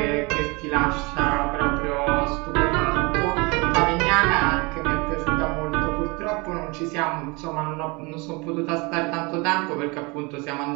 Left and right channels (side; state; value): left; quieter; 27.3 dB